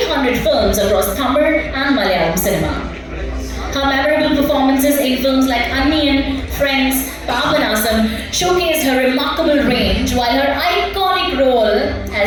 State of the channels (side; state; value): both; identical; correlation 1.00